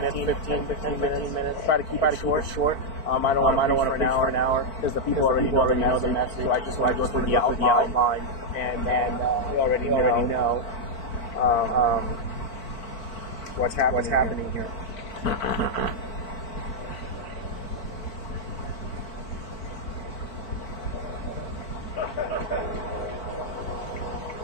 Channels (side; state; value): right; late; 4.5 ms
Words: 15 minutes. Try to keep it short. I don't want to preach for an hour because the people already know the message. So I just want to go through the outline, and we already know what's happening here.